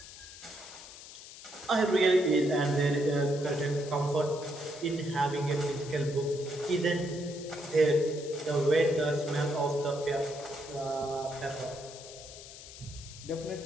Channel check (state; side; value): noise; left; hiss, 15 dB below the sound